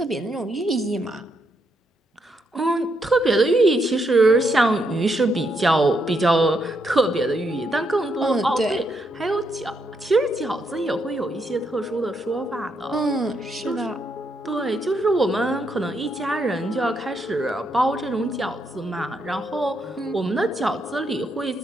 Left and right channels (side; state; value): both; normal; correlation 0.78